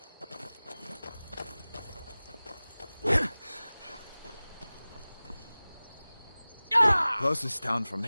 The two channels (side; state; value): both; inverted; correlation -0.99